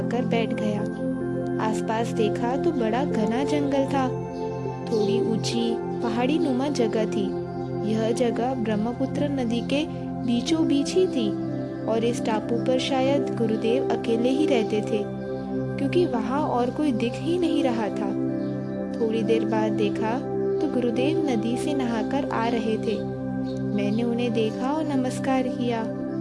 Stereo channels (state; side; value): identical; both; correlation 1.00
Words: बैठ गया। आसपास देखा तो बड़ा घना जंगल था। थोड़ी ऊंची पहाड़ी नुमा जगह थी। यह जगह ब्रह्मपुत्र नदी के बीचों बीच ही थी और इस टापू पर शायद गुरुदेव अकेले ही रहते थे, क्योंकि वहाँ और कोई दिख ही नहीं रहा था। थोड़ी देर बाद देखा तो गुरुदेव नदी से नहाकर आ रहे थे। मैंने उन्हें देखा और नमस्कार किया।